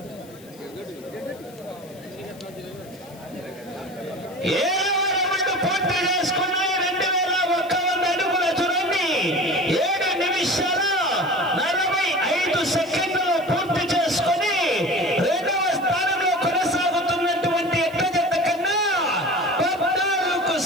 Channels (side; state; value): left; noise; hiss, 24 dB below the sound